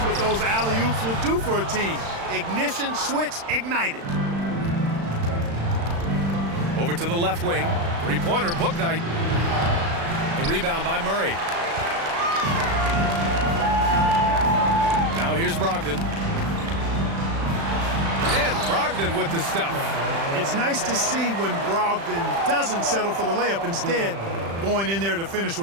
what those alley-oops will do for a team. Ignition, switch, ignited. Over to the left wing. Three-pointer, Bouknight. The rebound by Murray. Now here's Brogdon. And Brogdon with the stuff. It's nice to see when Brogdon doesn't settle for the layup, instead going in there to finish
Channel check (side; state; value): left; late; 36 ms